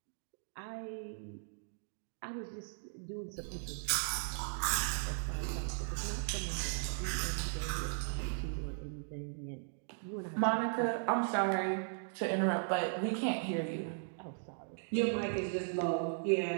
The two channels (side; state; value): left; silent; digital silence